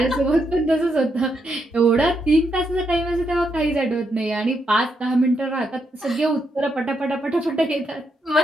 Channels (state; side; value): normal; both; correlation 0.80